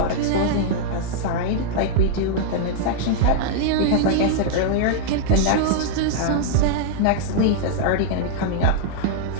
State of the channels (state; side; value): different; both; correlation -0.01